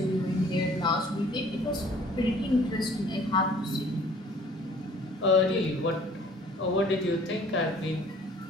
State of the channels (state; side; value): normal; both; correlation 0.53